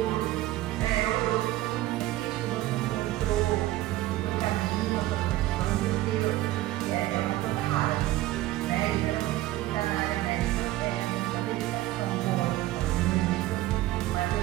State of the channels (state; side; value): quieter; left; 16.3 dB